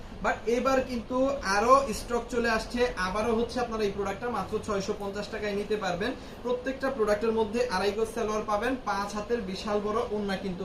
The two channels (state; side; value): identical; both; correlation 1.00